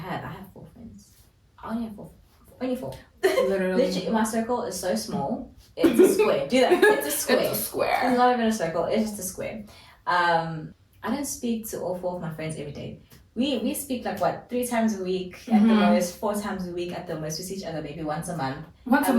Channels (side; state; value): both; identical; correlation 1.00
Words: 4 friends. I only have 4. Only 4. Literally, my circle is so small. It's a square. Do that. It's a square. It's a square. It's not even a circle. It's just a square. I don't speak to all 4 of my friends every day. We speak like 3 times a week at the most, 4 times a week at the most. We see each other maybe once a month. Once a